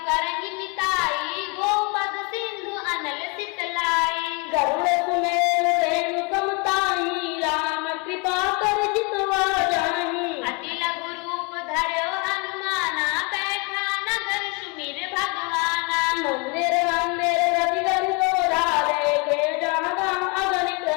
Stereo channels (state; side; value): quieter; right; 30.9 dB